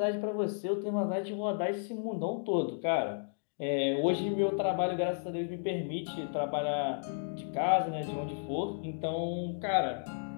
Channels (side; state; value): right; silent; digital silence